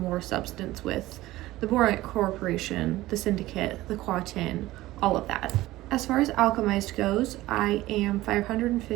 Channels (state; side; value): quieter; left; 17.1 dB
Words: substance with the Borant Corporation, the Syndicate, the Quatin, all of that. As far as Alchemised goes, I am